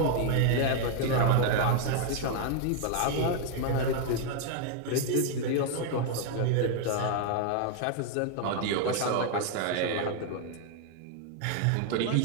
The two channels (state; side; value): different; both; correlation 0.00